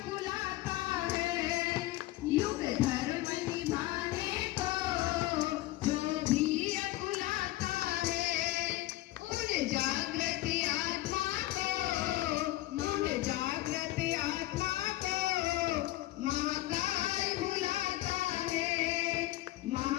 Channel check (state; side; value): quieter; right; 17.1 dB